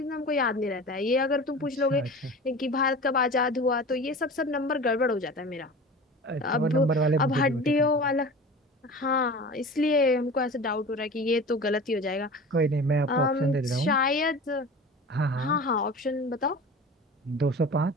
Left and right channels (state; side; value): normal; both; correlation 0.36